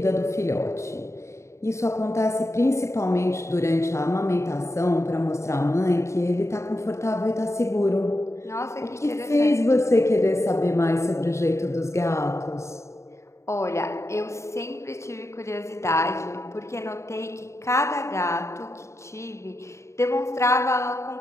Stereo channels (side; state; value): right; late; 0.14 ms